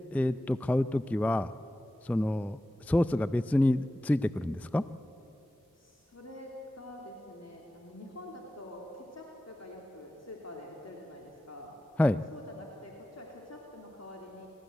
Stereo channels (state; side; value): normal; both; correlation 0.94